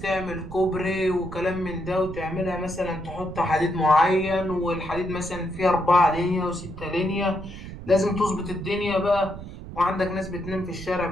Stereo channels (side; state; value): right; noise; rumble, 11 dB below the sound